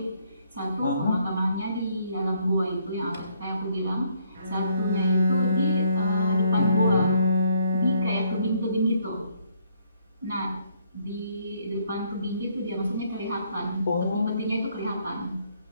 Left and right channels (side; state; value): both; inverted; correlation -0.69